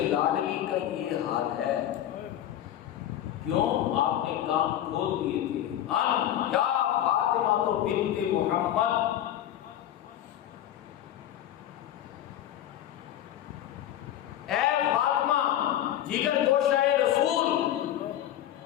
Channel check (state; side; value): quieter; right; 11.8 dB